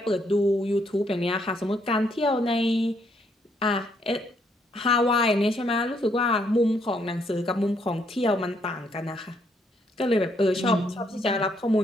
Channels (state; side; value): normal; both; correlation 0.72